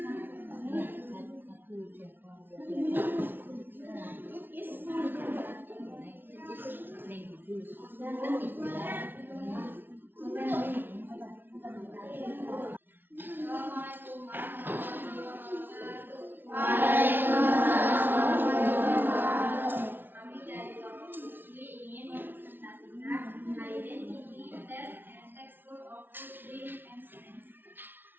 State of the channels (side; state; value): left; late; 0.097 ms